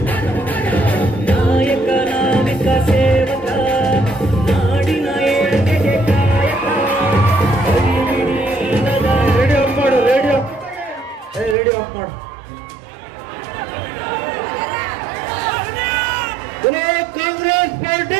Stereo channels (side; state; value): left; drops out; at 11.6 s